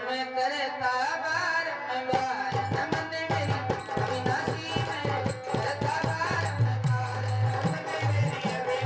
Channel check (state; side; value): identical; both; correlation 1.00